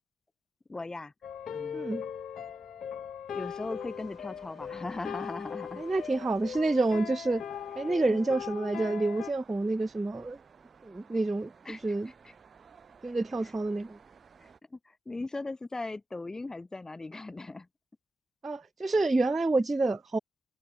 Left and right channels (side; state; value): both; normal; correlation 0.91